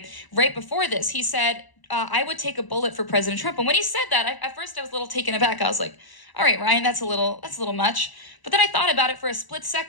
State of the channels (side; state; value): right; late; 1.0 ms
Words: Right before this, he said, I would take a bullet for President Trump. And when he said that, at first I was a little taken aback. I was like, all right, Ryan, that's a little much. But then I thought about it for a split